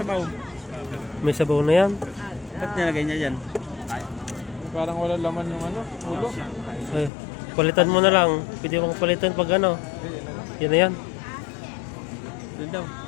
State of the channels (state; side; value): drops out; right; at 7.1 s